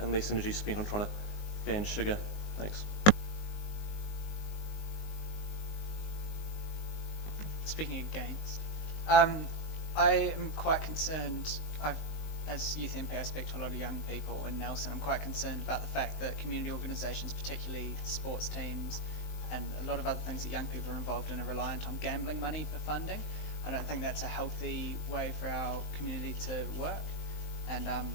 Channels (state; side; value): late; right; 19 ms